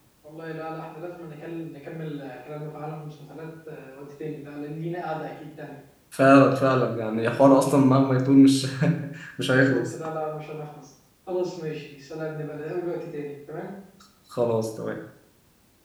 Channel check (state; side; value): identical; both; correlation 1.00